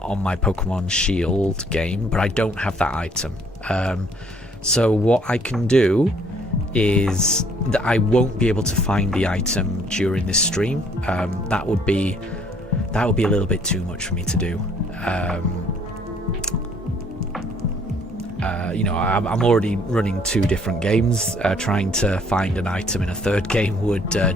my Pokemon Shield game, but I don't have that item. So what I can do is that I won't be able to find the item during this stream. That would be a little bit too much for me to do. You know, I'm already running 2 different games. Trying to find an item in a 3rd game would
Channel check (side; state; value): both; normal; correlation 0.62